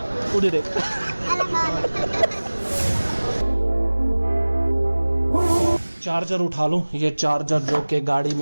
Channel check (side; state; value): both; inverted; correlation -1.00